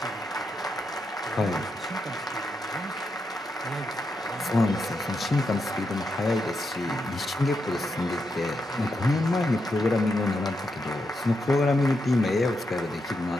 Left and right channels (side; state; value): both; normal; correlation 0.83